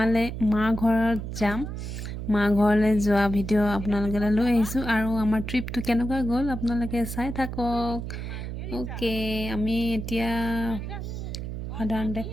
ঘৰত যাম। মা ঘৰলৈ যোৱা ভিডিঅ' আপোনালোকলৈ লৈ আহিছোঁ আৰু আমাৰ ট্ৰিপটো কেনেকুৱা গ'ল আপোনালোকে চাই থাকক। ওকে, আমি এতিয়া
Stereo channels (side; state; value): right; noise; hum, 6 dB below the sound